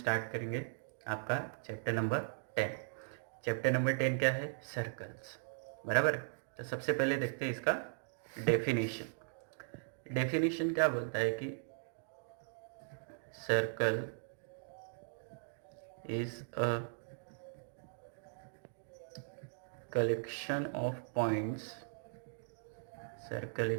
करेंगे आपका चैप्टर नंबर 10। चैप्टर नंबर 10 क्या है? सर्कल्स। बराबर। तो सबसे पहले देखते हैं इसका डेफिनेशन। डेफिनेशन क्या बोलता है कि circle is a collection of points. Circle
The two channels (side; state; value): left; silent; digital silence